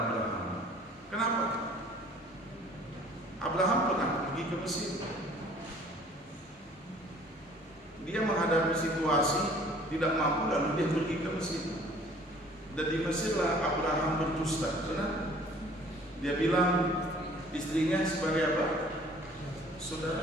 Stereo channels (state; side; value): normal; both; correlation 0.53